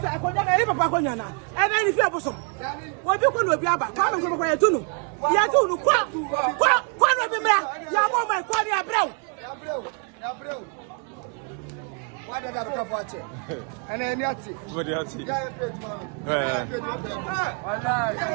Why did I come watch it? And then Yati. What do you see?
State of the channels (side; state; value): left; quieter; 37.9 dB